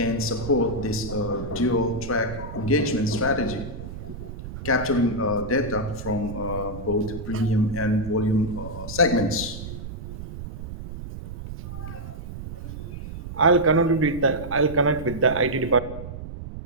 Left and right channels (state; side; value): noise; right; rumble, 10 dB below the sound